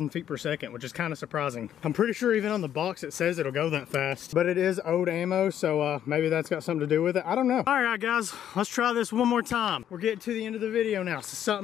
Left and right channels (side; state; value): right; quieter; 10.3 dB